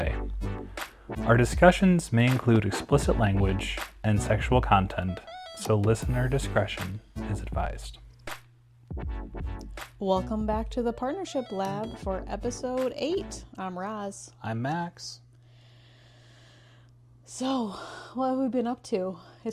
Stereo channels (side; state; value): both; identical; correlation 1.00